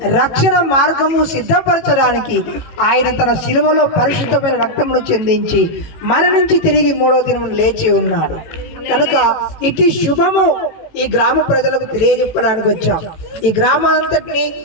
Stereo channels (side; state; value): right; late; 18 ms